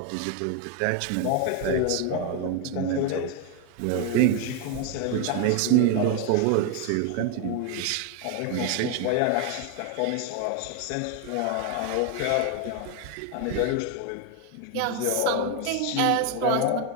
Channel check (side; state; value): both; different; correlation 0.01